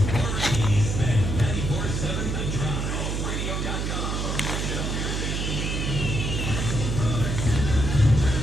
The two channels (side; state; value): right; noise; hum, 1 dB below the sound